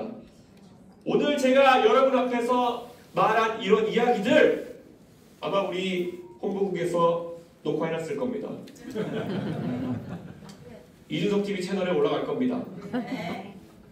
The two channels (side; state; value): both; identical; correlation 1.00